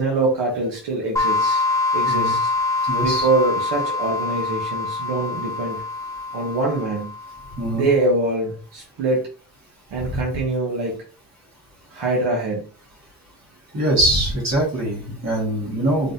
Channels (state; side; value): normal; both; correlation 0.17